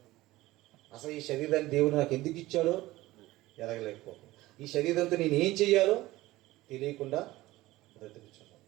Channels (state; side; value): quieter; left; 17.9 dB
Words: అసలు ఈ శరీరాన్ని దేవుడు నాకు ఎందుకు ఇచ్చాడో ఎరగలేకపోతాను. ఈ శరీరంతో నేను ఏం చెయ్యాలో తెలియకుండా బ్రతుకుతున్నాను.